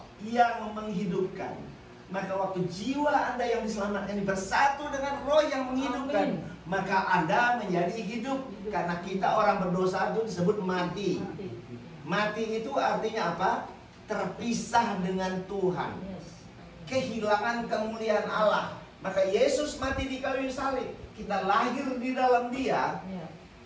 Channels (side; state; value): both; identical; correlation 1.00